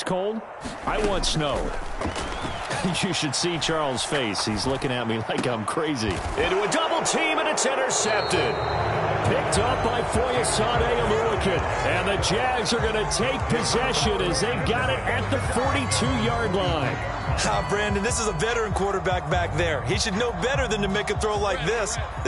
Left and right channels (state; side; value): identical; both; correlation 1.00